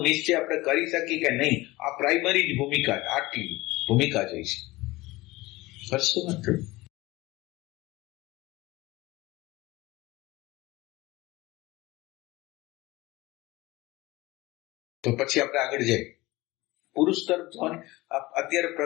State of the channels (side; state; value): right; quieter; 20.1 dB